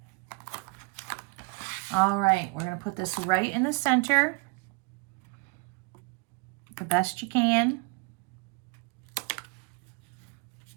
All right, we're going to put this right in the center. The best you can.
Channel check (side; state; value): left; quieter; 29.9 dB